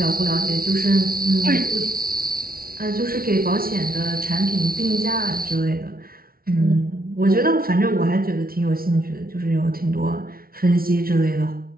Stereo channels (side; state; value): left; late; 0.43 ms